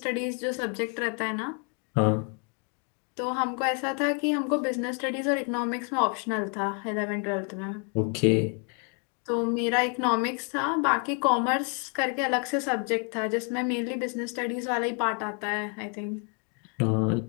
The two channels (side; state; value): right; quieter; 38.6 dB